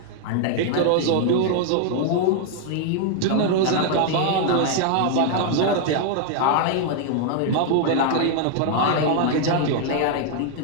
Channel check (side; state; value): both; different; correlation 0.00